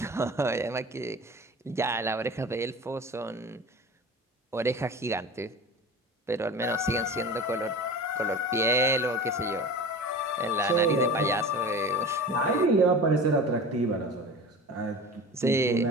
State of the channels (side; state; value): both; normal; correlation 0.35